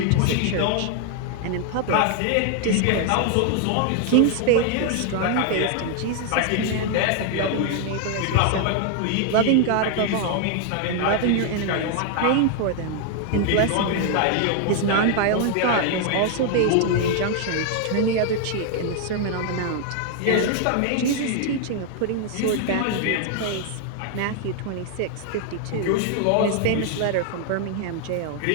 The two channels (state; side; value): different; both; correlation 0.00